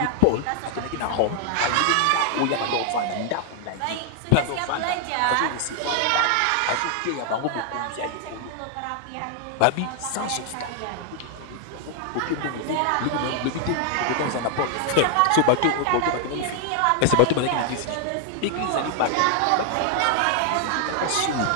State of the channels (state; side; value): different; both; correlation 0.00